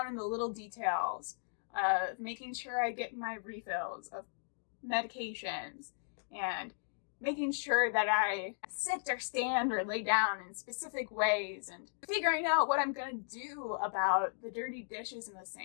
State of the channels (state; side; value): silent; right; digital silence